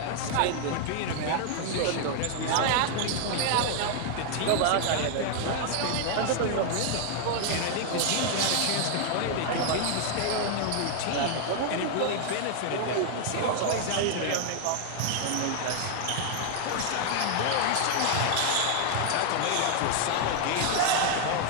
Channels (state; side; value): different; both; correlation 0.00